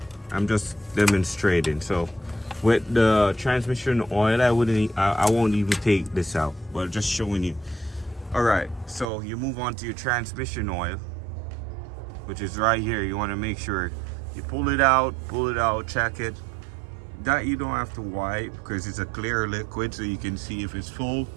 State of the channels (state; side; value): drops out; left; at 9.1 s